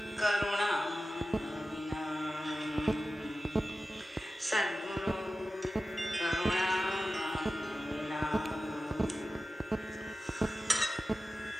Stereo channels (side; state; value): both; normal; correlation 0.94